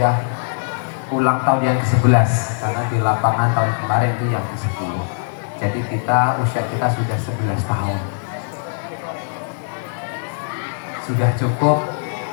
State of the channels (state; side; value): silent; right; digital silence